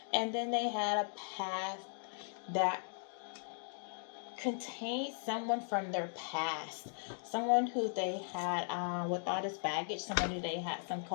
And then they had a path that contained someone from their past, someone who they had with all this baggage, someone who they had some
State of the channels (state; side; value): silent; right; digital silence